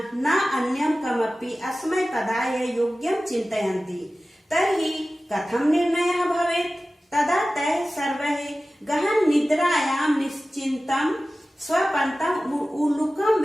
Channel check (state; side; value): normal; both; correlation 0.96